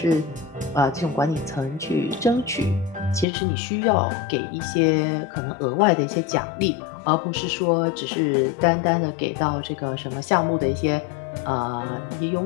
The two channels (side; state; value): right; drops out; at 3.2 s